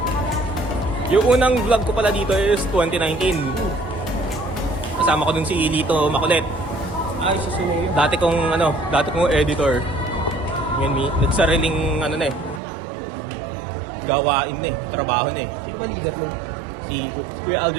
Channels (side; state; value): left; drops out; at 12.6 s